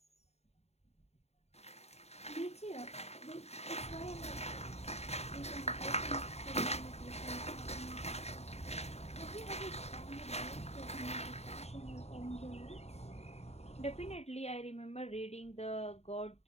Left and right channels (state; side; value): late; right; 0.31 ms